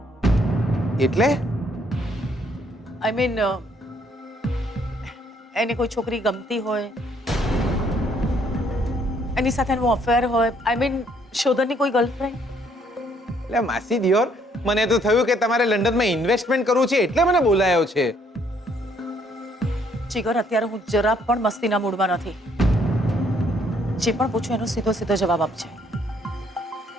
એટલે આઈ મીન એને કોઈ છોકરી ગમતી હોય, એની સાથે એનું અફેર હોય, આઈ મીન શોધનની કોઈ ગર્લફ્રેન્ડ? એટલે માસી દિયોર, મને તો થયું કે તમારે લંડનમાં ઇન્વેસ્ટમેન્ટ કરવું છે એટલે મને બોલાયો છે. જીગર, અત્યારે હું જરા પણ મસ્તીના મૂડમાં નથી. જે પણ પૂછું એનો સીધો સીધો જવાબ આપજે.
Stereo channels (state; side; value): normal; both; correlation 0.66